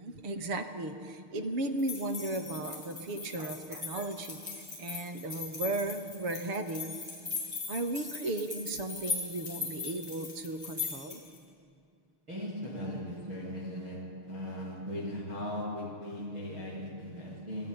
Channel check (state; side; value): late; left; 6.6 ms